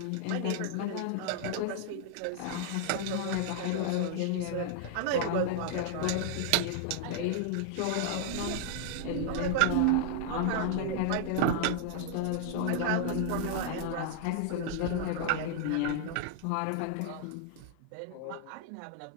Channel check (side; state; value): both; different; correlation -0.01